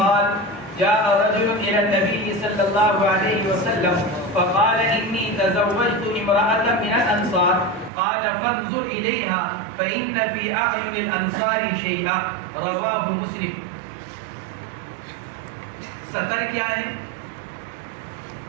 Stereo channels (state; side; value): drops out; left; at 7.9 s